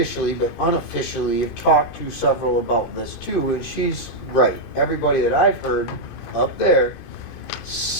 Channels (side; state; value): right; late; 2.5 ms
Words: but unofficially, have talked to several about this too, and she's right. Everybody that I've heard up there,